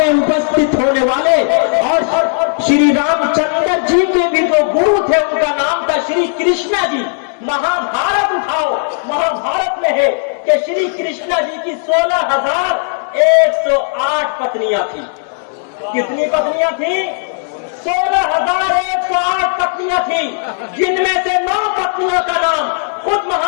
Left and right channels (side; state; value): right; silent; digital silence